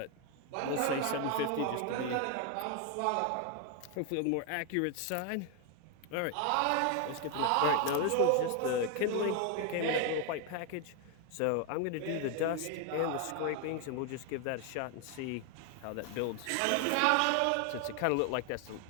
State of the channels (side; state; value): both; different; correlation 0.01